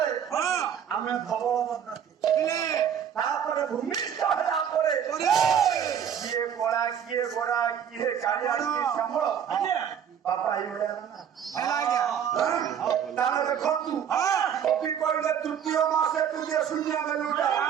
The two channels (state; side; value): quieter; left; 8.6 dB